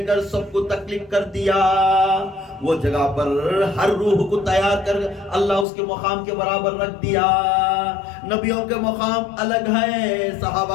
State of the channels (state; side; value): drops out; right; at 5.7 s